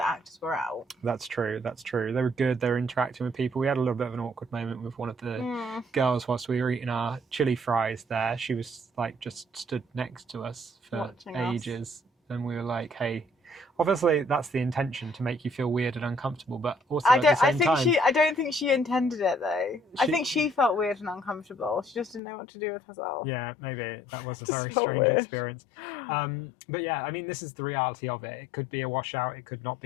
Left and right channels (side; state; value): right; drops out; at 22.2 s